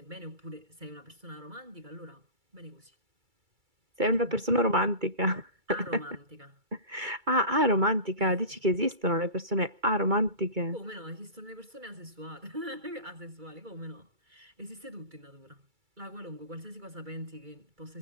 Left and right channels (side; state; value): left; late; 2.3 ms